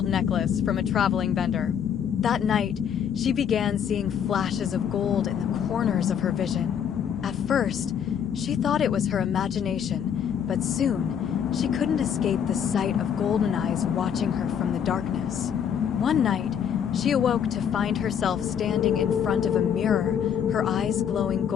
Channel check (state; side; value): quieter; right; 8.3 dB